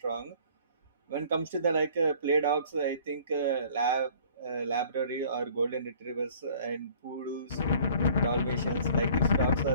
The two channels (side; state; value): both; inverted; correlation -0.52